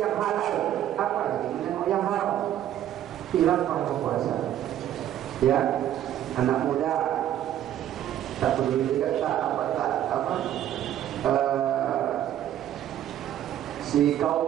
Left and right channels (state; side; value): quieter; left; 11.6 dB